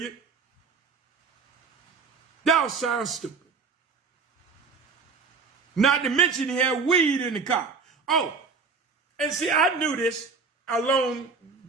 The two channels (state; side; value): quieter; left; 4.8 dB